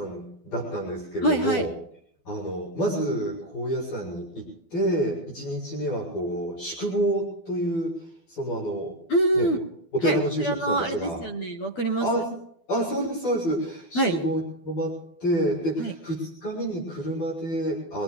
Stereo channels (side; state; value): right; late; 12 ms